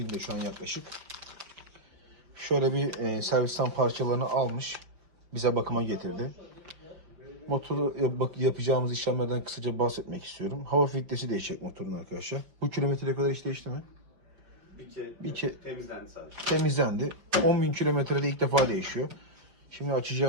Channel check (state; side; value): late; left; 5.1 ms